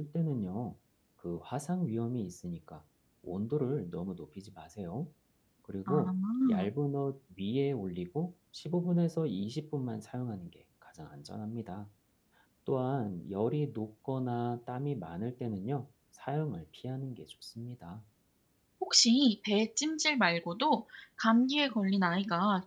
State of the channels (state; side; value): identical; both; correlation 1.00